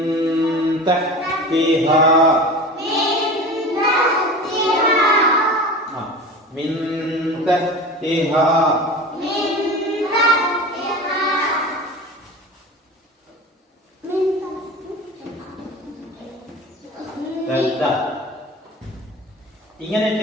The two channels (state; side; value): normal; both; correlation 0.34